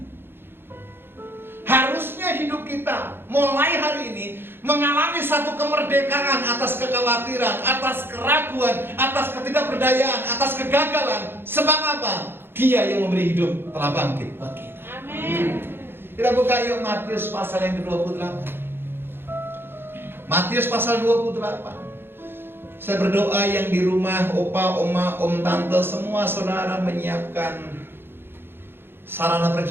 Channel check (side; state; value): left; late; 0.10 ms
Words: Harusnya hidup kita mulai hari ini mengalami satu kemerdekaan atas kekhawatiran, atas keraguan, atas ketidakberdayaan, atas kegagalan. Sebab apa? Dia yang memberi hidup telah bangkit buat kita. Amin. Kita buka yuk Matius pasal yang ke-28. Matius pasal 28. Saya berdoa yang di rumah, opa, oma, om, tante, semua saudara menyiapkan sarana